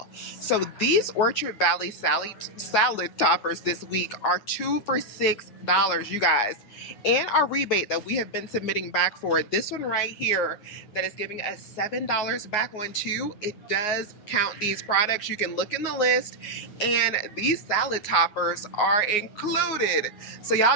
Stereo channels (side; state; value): right; late; 9.6 ms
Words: So these Orchard Valley salad toppers this week are 2 for $6, you guys. And our rebate that we have been submitting back for it, this one right here that is giving us $7 back on 2, it does count these products. You can look in the list and these salad toppers are included. So y'all